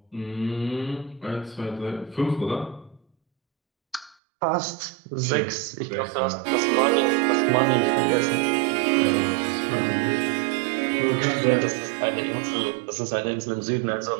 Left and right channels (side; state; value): left; drops out; at 4.2 s